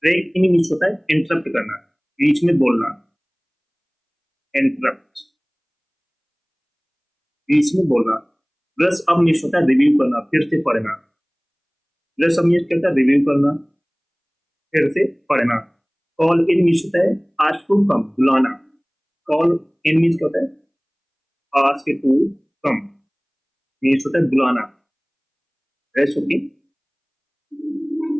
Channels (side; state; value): both; identical; correlation 1.00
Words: ब्रेक इन मीन्स होता है इंटरप्ट करना, बीच में बोलना, इंटरप्ट, बीच में बोलना। ब्रश अप मीन्स होता है रिव्यू करना, फिर से पढ़ना। ब्रश अप मीन्स क्या होता है? रिव्यू करना, फिर से पढ़ना। कॉल इन मीन्स होता है आस्क टू कम, बुलाना। कॉल इन मीन्स क्या होता है? आस्क टू कम मीन्स होता है बुलाना। Rest okay.